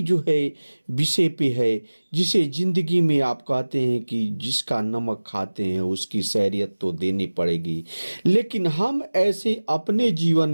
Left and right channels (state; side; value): inverted; both; correlation -1.00